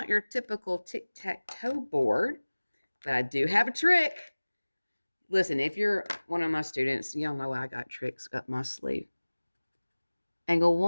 your typical tic-tac-toe board, but I do have a trick. Listen, if you're one of my students, y'all know I got tricks up my sleeve. Angle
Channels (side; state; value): both; inverted; correlation -1.00